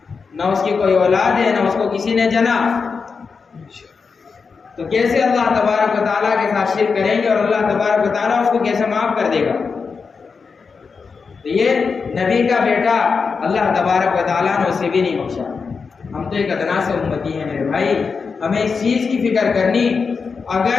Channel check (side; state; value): right; quieter; 5.2 dB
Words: نہ اس کی کوئی اولاد ہے، نہ اس کو کسی نے جنا، تو کیسے اللہ تبارک و تعالیٰ کے ساتھ شرک کریں گے اور اللہ تبارک و تعالیٰ اس کو کیسے معاف کر دے گا؟ تو یہ نبی کا بیٹا اللہ تبارک و تعالیٰ نے اسے بھی نہیں بخشا۔ ہم تو ایک ادنا سے امتی ہیں میرے بھائی، ہمیں اس چیز کی فکر کرنی،